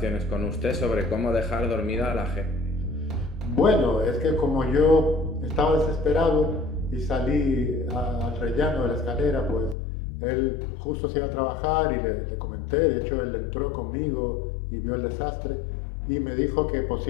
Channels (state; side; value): drops out; right; at 9.8 s